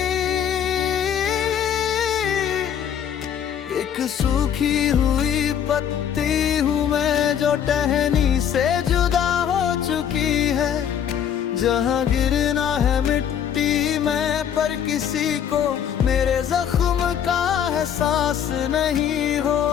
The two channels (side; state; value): right; quieter; 8.9 dB